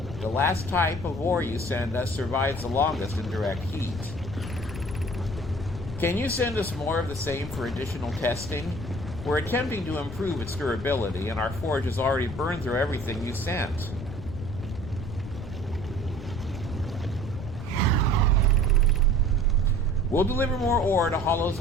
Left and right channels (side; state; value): left; noise; rumble, 9 dB below the sound